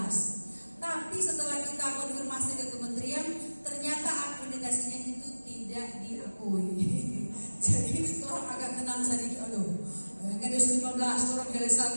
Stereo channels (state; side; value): inverted; both; correlation -1.00